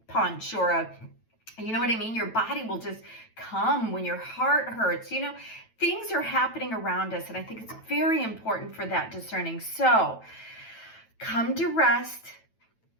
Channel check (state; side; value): late; right; 9.1 ms